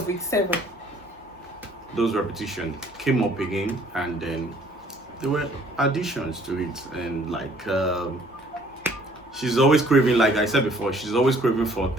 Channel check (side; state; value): both; normal; correlation 0.59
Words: week 7. those repetition came up again, and then there were additions to it, and like she's always craving, like I said before, she's always craving for